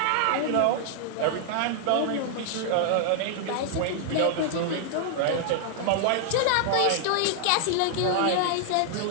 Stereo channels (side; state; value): both; different; correlation -0.01